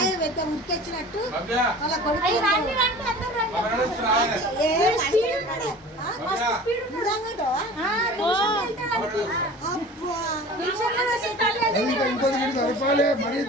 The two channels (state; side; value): normal; both; correlation 0.41